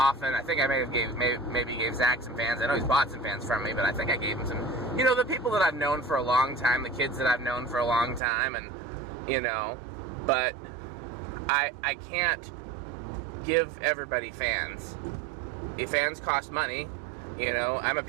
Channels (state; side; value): drops out; left; at 8.2 s